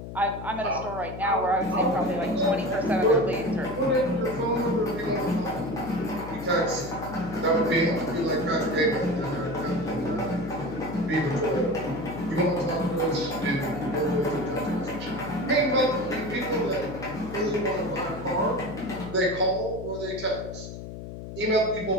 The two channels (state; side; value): noise; left; hum, 10 dB below the sound